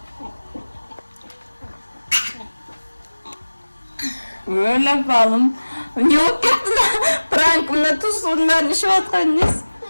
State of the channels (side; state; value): both; inverted; correlation -1.00